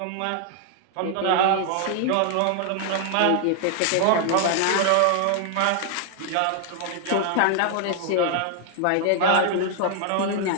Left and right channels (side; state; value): both; different; correlation 0.00